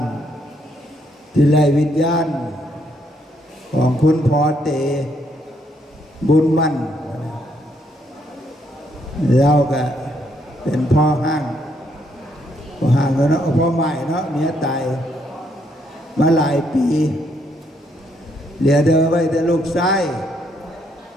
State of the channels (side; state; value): both; normal; correlation 0.73